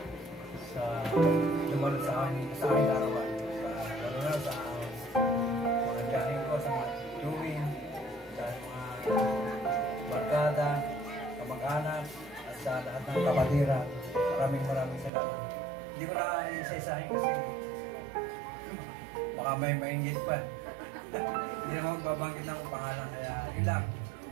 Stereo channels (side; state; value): left; drops out; at 15.1 s